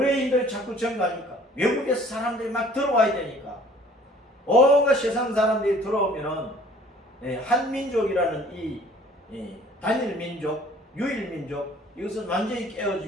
자꾸 증가하니까, 외국에서 사람들이 막 들어와야 되니까, 온갖 세상 사람들이 들어오면은 한민족이라는 이 단일 민족, 유일 민족, 이것은 완전히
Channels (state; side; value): normal; both; correlation 0.53